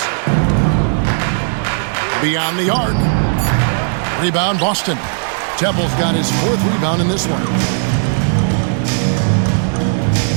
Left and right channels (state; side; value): silent; left; digital silence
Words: Beyond the arc. Rebound Boston. Temple's got his 4th rebound in this one.